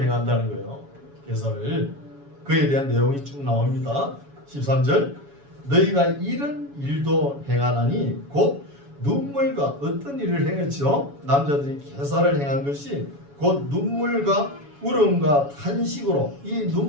행한다는 거예요. 계사를. 그에 대한 내용이 쭉 나옵니다. 13절 너희가 이런 일도 행하나니 곧 눈물과 어떤 일을 행했죠? 남자들이 계사를 행한 것이 곧 눈물과 울음과 탄식으로 이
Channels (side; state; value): left; late; 7.1 ms